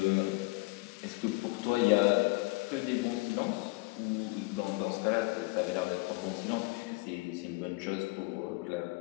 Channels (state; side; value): quieter; right; 24.7 dB